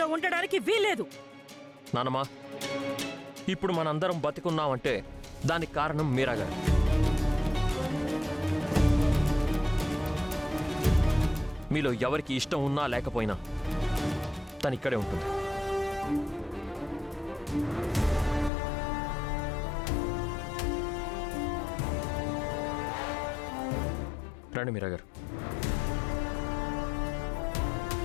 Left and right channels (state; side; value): drops out; right; at 18.5 s